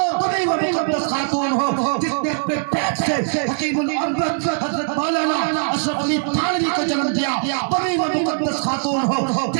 تم ہی وہ مقدس خاتون ہو جس نے اپنے پیٹ سے حکیم الامت حضرت مولانا اشرف علی تھانوی کو جنم دیا، تم ہی وہ مقدس خاتون ہو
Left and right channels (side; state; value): left; silent; digital silence